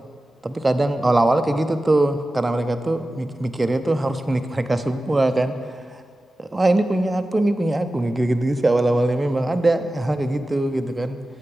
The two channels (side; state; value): both; normal; correlation 0.95